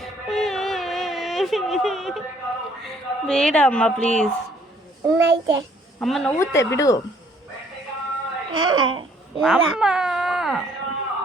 ಬೇಡ ಅಮ್ಮ ಪ್ಲೀಸ್. ಅಮ್ಮ ನೋವುತ್ತೆ ಬಿಡು.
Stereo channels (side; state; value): both; normal; correlation 0.62